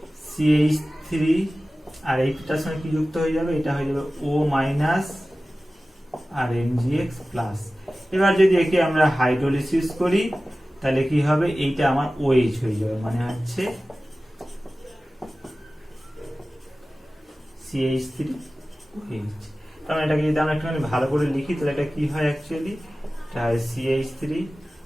CH3, আর এইটার সঙ্গে কি যুক্ত হয়ে যাবে, এটা হয়ে যাবে O মাইনাস আর MgX প্লাস। এবার যদি একে আমরা হাইড্রোলিসিস করি তাহলে কি হবে, এইটা আমার OH হয়ে যাবে, মানে হচ্ছে CH3OH। কারণ এটাকে যদি আমরা একটুখানি ভালো করে লিখি তাহলে এটা কি হয় অ্যাকচুয়ালি, এটা হয়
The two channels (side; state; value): both; normal; correlation 0.96